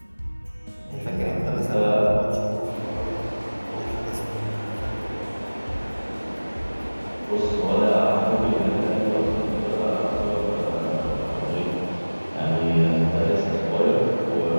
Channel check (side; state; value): both; inverted; correlation -1.00